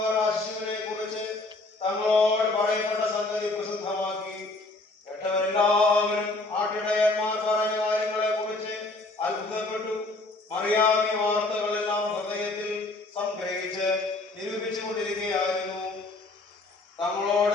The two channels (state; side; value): quieter; right; 3.1 dB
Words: ആ ശിവനെ കുറിച്ച് തങ്ങളോട് പറയപ്പെട്ട സംഗതി പ്രസിദ്ധമാക്കി. കേട്ടവരെല്ലാവരും ആട്ടിടയന്മാർ പറഞ്ഞ കാര്യങ്ങളെ കുറിച്ച് അത്ഭുതപ്പെട്ടു. മറിയാമി വാർത്തകളെല്ലാം ഹൃദയത്തിൽ സംഗ്രഹിച്ച് നിരൂപിച്ചു കൊണ്ടിരിക്കുകയായിരുന്നു.